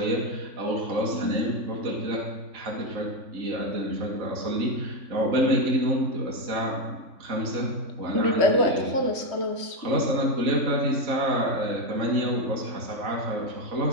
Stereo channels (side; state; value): left; late; 3.5 ms